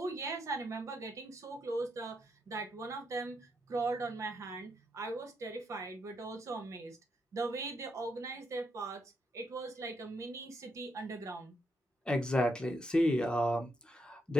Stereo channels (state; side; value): normal; both; correlation 0.79